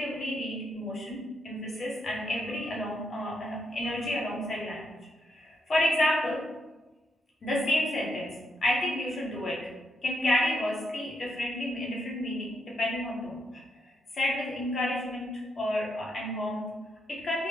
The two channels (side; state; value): both; normal; correlation 0.79